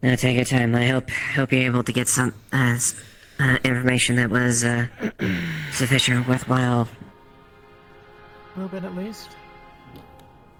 take your time. I hope you're able to get some information that was sufficient, worthwhile. A little bit at least.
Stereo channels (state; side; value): identical; both; correlation 1.00